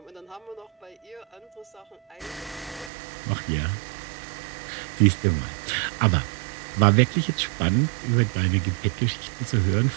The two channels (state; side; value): drops out; left; at 2.9 s